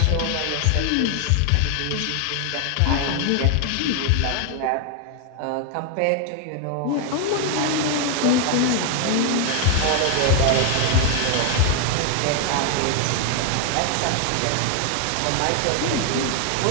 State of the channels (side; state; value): both; different; correlation 0.01